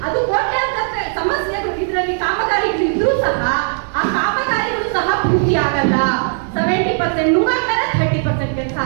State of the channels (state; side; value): silent; left; digital silence